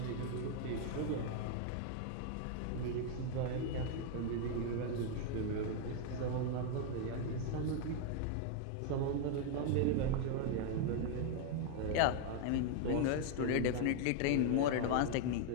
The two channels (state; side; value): different; both; correlation 0.00